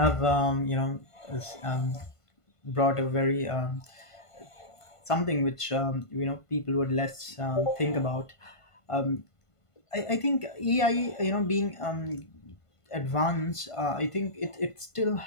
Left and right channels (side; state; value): right; late; 1.5 ms